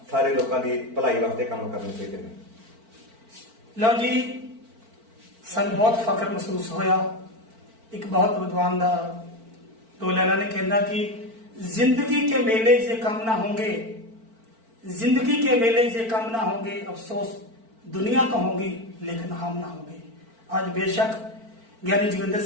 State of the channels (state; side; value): late; left; 4.5 ms